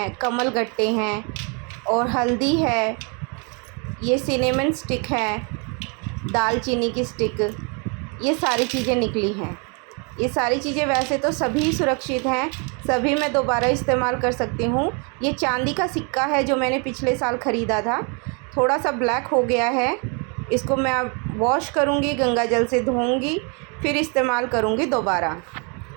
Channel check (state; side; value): quieter; left; 35.1 dB